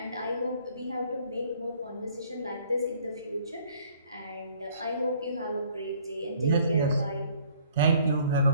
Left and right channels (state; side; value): inverted; both; correlation -0.59